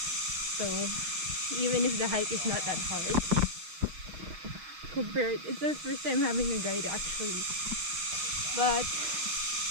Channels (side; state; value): left; late; 6.3 ms